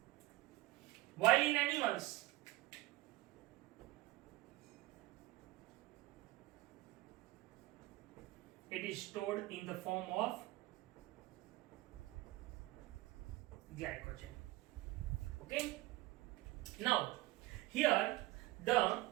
while in animals it is stored in the form of glycogen. Okay, now here the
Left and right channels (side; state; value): left; quieter; 19.2 dB